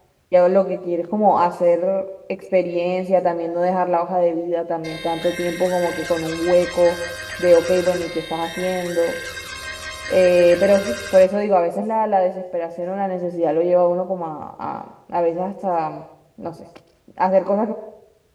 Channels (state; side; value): identical; both; correlation 1.00